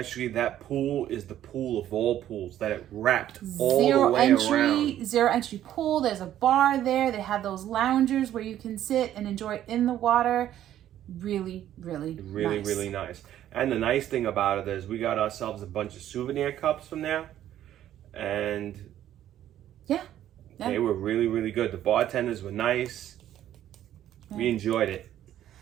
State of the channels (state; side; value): quieter; left; 11.8 dB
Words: that pool is the pool of all pools that it wrapped all the way around. Zero entry pool. There's a bar there. They have those loungers where you can sit and enjoy in the water. Really nice. Really nice. And the nice thing about it is we got ourselves a bunch of souvenir cups from there. And yeah. They were really good. The bartenders were nice. Yeah. We enjoyed it.